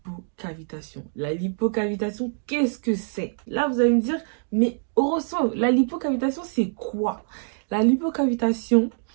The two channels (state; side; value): silent; left; digital silence